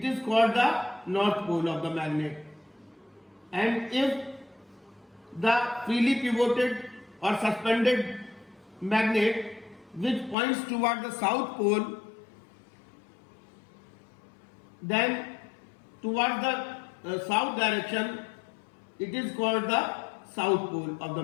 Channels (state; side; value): drops out; right; at 10.4 s